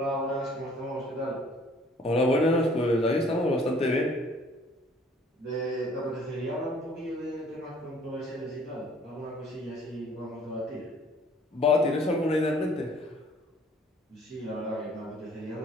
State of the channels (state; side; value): normal; both; correlation 0.57